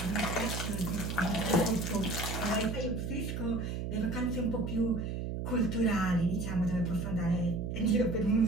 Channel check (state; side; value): noise; right; hum, 3 dB below the sound